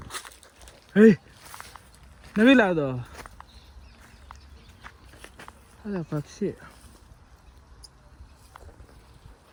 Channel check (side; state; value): both; identical; correlation 1.00